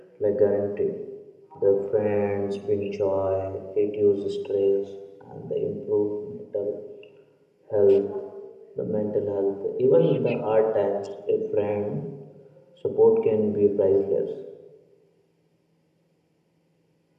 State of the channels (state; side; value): identical; both; correlation 1.00